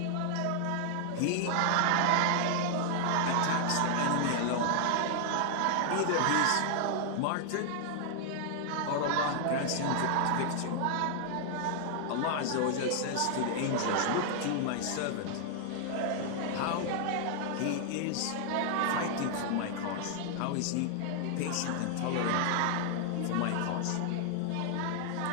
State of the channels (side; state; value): both; different; correlation 0.00